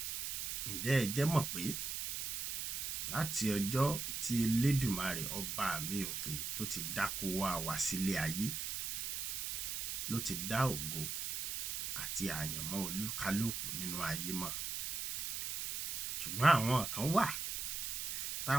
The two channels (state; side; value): noise; right; hiss, 3 dB below the sound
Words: Ǹjẹ́ ẹ jẹ́ mọ̀ pé láti ọjọ́ tí Elédùmarè ọba mi òkè tó ti dákó wá sílé ayé ló ti dá ògo àti àyànmọ́ olúkálùkù nínú ayé mọ̀. Ṣùgbọ́n àwọn kan wà tá